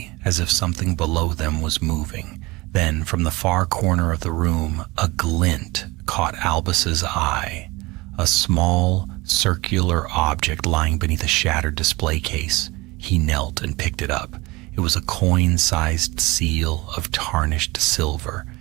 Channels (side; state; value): left; quieter; 22.7 dB